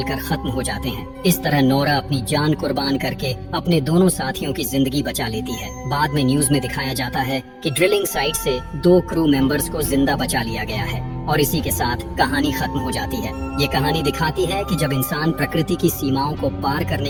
खत्म हो जाते हैं। इस तरह नोरा अपनी जान कुर्बान करके अपने दोनों साथियों की जिंदगी बचा लेती है। बाद में न्यूज में दिखाया जाता है कि ड्रिलिंग साइट से 2 क्रू मेंबर्स को जिंदा बचा लिया गया है और इसी के साथ कहानी खत्म हो जाती है। ये कहानी दिखाती है कि जब इंसान प्रकृति की सीमाओं को पार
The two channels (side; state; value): both; identical; correlation 1.00